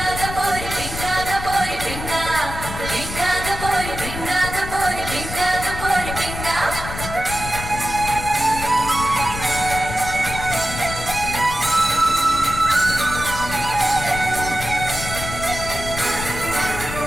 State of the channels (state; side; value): noise; left; rumble, 8 dB below the sound